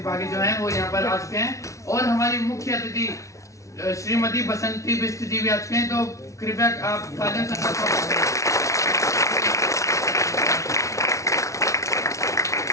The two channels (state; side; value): late; right; 0.15 ms